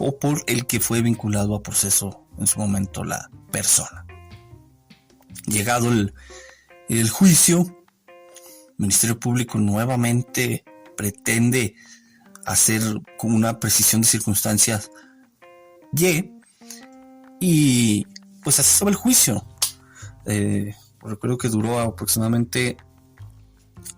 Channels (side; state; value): both; identical; correlation 1.00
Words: por el que fue vinculado a proceso en su momento la persona. Llegado el juicio, el Ministerio Público nuevamente pretende hacer con una precisión de circunstancias y pues así estaba el juicio. Recuerdo que duró aproximadamente